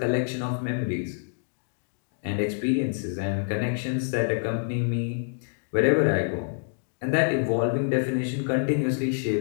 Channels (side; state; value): right; silent; digital silence